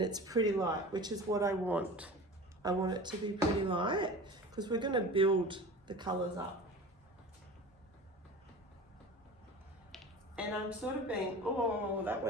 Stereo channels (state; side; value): normal; both; correlation 0.36